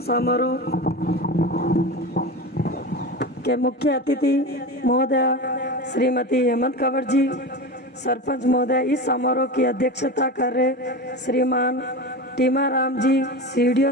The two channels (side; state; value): both; normal; correlation 0.25